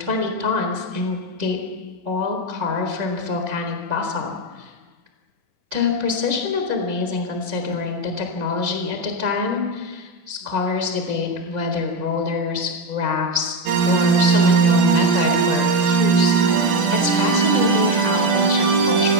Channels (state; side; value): late; left; 10 ms